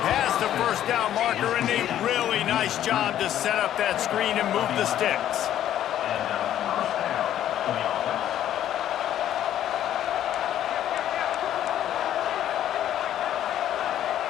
past the first down marker, and a really nice job to set up that screen and move the sticks.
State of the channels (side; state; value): right; quieter; 11.4 dB